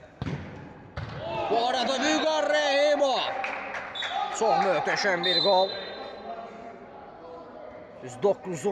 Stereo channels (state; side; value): identical; both; correlation 1.00